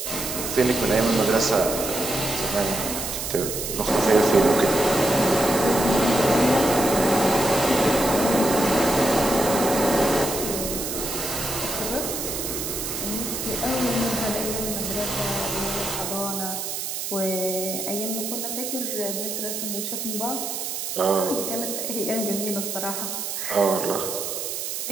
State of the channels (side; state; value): right; noise; hiss, 4 dB below the sound